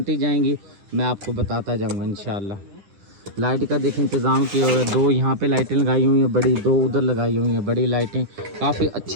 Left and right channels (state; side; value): late; left; 10 ms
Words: जाएंगी मैं आपको बताता जाऊंगा इंशाल्लाह। लाइट का देखें इंतज़ाम किया हुआ है, 2 यहाँ पे लाइटें लगाई हुई हैं बड़ी, 2 उधर लगाई हुई हैं बड़ी लाइटें। काफ़ी